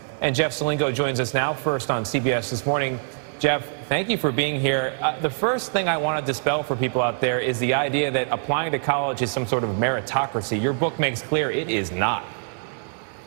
And Jeff Salingo joins us now, first on CBS This Morning. Jeff, thank you for being here. The first thing I want to dispel for people out there is the idea that applying to college is some sort of meritocracy. Your book makes clear it is not.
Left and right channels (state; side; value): silent; left; digital silence